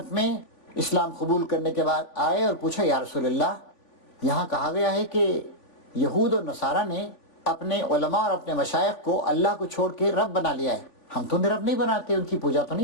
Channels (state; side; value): late; right; 3.5 ms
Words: میں اسلام قبول کرنے کے بعد آئے اور پوچھا یا رسول اللہ، یہاں کہا گیا ہے کہ یہود اور نصارہ نے اپنے علماء اور اپنے مشائخ کو اللہ کو چھوڑ کے رب بنا لیا ہے، ہم تو رب نہیں بناتے، ان کی پوجا تو